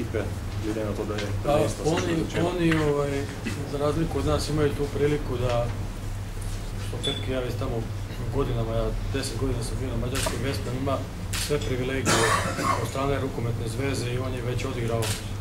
glede na to, da je prvenstvo se že začelo? Oni, za razliku od nas, imaju tu priliku da, što Petki, ja već tamo godinama, ja 10 godina sam bio na mađarskom Vesprem, ima sve privilegije od strane rukometne zveze i on je već odigrao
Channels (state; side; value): identical; both; correlation 1.00